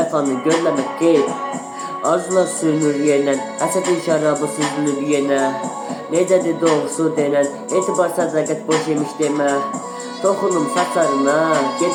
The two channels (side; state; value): both; identical; correlation 1.00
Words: görləmək qeyb. Arzular sürünür yerlə, həsətin şərabı süzülür yenə. Necədir doğrusu denən, etibar sədaqət boş yemiş demə. Toxunum saçlarına,